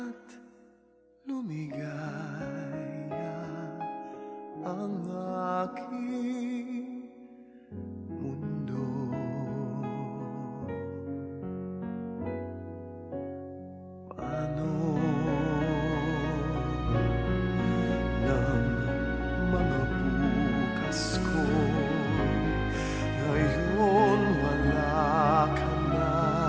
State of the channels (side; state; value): both; identical; correlation 1.00